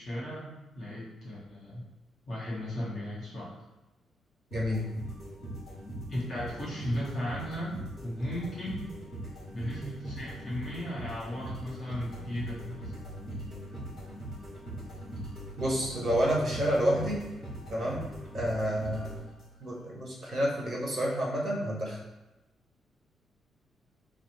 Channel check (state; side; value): normal; both; correlation 0.80